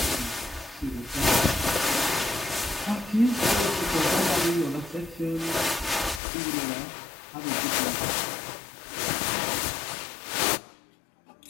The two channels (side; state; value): right; drops out; at 6.2 s